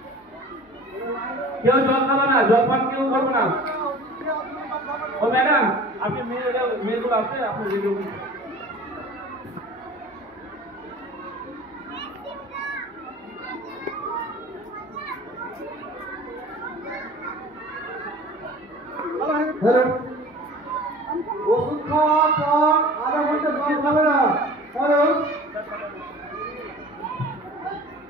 কেউ জল খাবে না, জল পান কেউ করবে না। ও ম্যাডাম, আপনি মেয়েগুলো আছে আপনি ভিডিও ওষুধ খাওয়ার পর আধা ঘন্টা জল খাবে না, কারণ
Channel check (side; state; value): both; normal; correlation 0.42